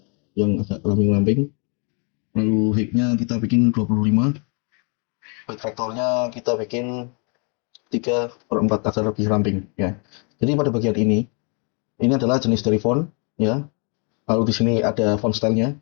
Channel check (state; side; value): quieter; right; 36.0 dB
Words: yang agak lamping-lamping. Lalu height-nya kita bikin 25. Weight vektornya kita bikin 3/4 agar lebih ramping ya. Jadi pada bagian ini adalah jenis dari font ya. Lalu di sini ada font style-nya,